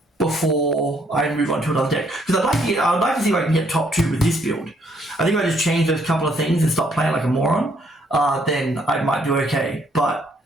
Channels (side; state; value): both; normal; correlation 0.68